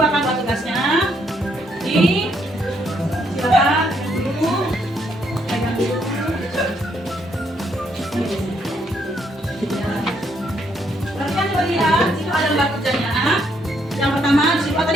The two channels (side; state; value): both; normal; correlation 0.73